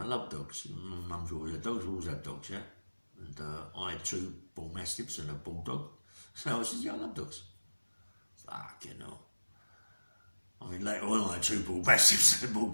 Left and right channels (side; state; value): both; inverted; correlation -1.00